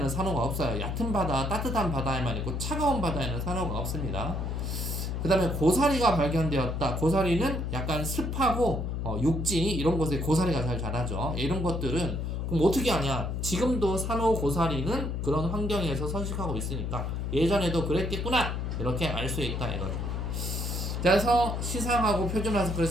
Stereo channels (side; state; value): left; noise; hum, 2 dB below the sound